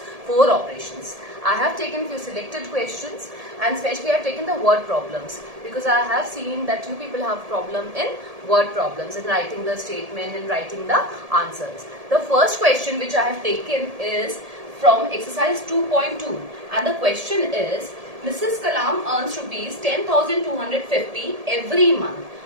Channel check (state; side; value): late; left; 1.7 ms